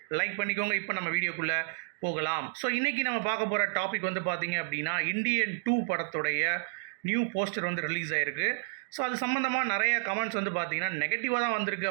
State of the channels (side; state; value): left; silent; digital silence